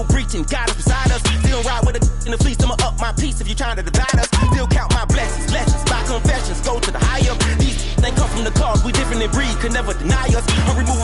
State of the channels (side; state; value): both; identical; correlation 1.00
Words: breaching. God is beside us, still ride with a in the fleece. I'ma up my piece if you're trying to divide us. Still count my blessings, lessons, my confessions, go to the higher. These they come from the cause, we different in breed, could never deny us. I'm